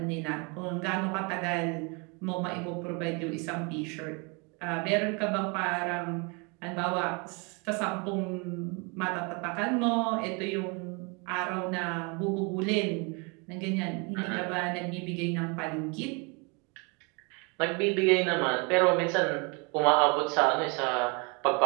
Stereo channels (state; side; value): quieter; left; 31.6 dB